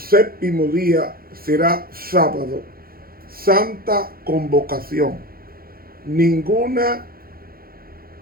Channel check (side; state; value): left; late; 0.43 ms